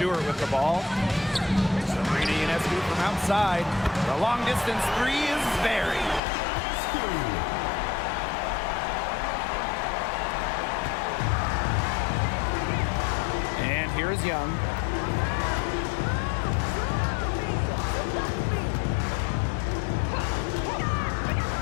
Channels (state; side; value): drops out; right; at 6.2 s